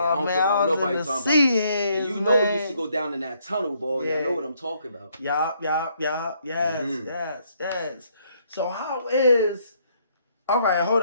don't care about nobody talking about. And you know we used to go down in that tunnel, boy. Yeah. I know what I'm talking about. Yes. So how is... All right, hold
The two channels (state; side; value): inverted; both; correlation -0.70